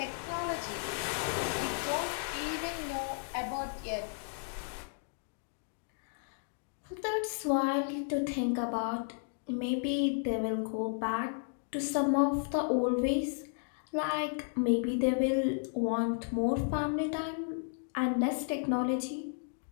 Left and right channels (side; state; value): right; silent; digital silence